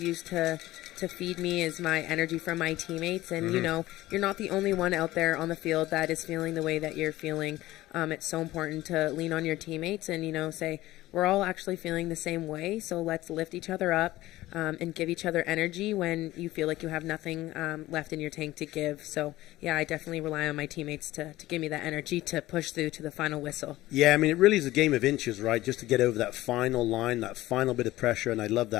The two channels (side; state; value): right; quieter; 16.7 dB